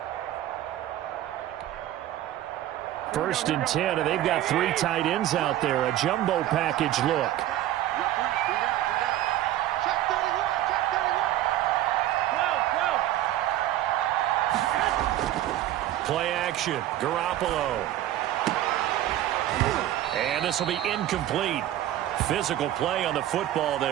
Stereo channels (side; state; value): left; quieter; 13.4 dB